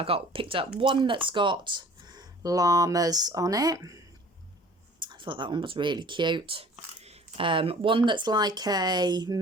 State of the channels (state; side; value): normal; both; correlation 0.48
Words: picked up one that's got llamas on it. I thought that one was really cute. One that's like a